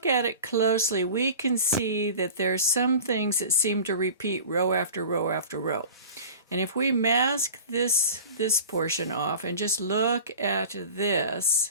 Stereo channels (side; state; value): both; inverted; correlation -0.39